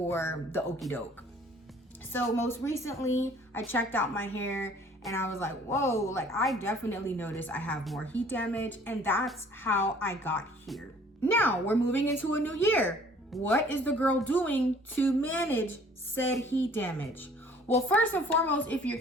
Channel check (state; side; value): normal; both; correlation 0.54